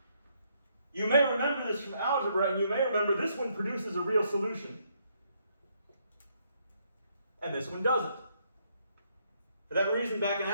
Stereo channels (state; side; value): inverted; both; correlation -0.72